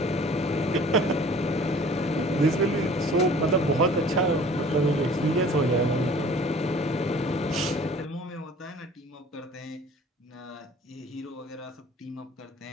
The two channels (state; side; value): normal; both; correlation 0.49